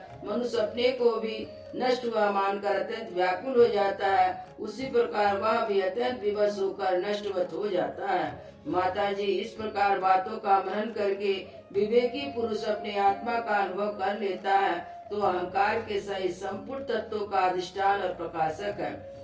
मनुष्य अपने को भी नष्ट हुआ मानकर अत्यंत व्याकुल हो जाता है, उसी प्रकार वह भी अत्यंत विवश होकर नष्टवत हो जाता है। माता जी, इस प्रकार बातों का मनन करके विवेकी पुरुष अपने आत्मा का अनुभव कर लेता है तो अहंकार के सहित संपूर्ण तत्वों का अधिष्ठान और प्रकाशक है।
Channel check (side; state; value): both; identical; correlation 1.00